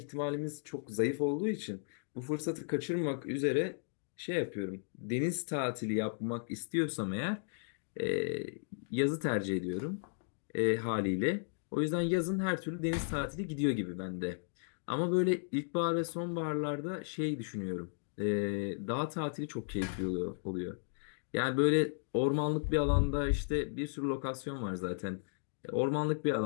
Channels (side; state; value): right; silent; digital silence